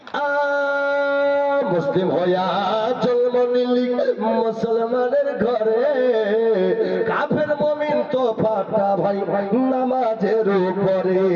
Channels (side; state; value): both; identical; correlation 1.00